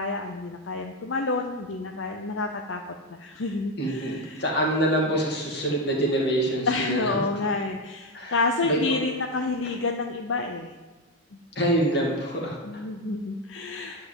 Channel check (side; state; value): both; normal; correlation 0.11